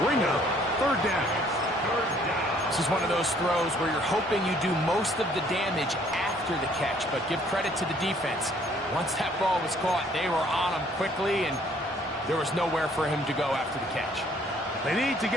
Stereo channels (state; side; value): normal; both; correlation 0.61